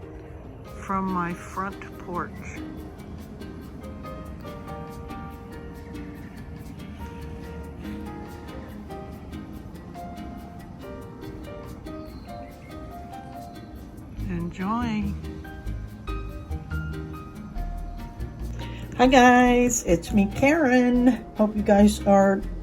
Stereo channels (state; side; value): identical; both; correlation 1.00